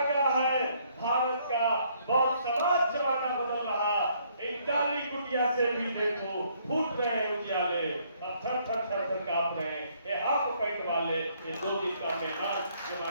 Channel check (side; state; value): both; inverted; correlation -0.67